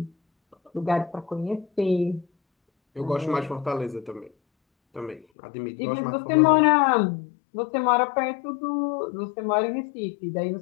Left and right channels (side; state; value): right; drops out; at 5.2 s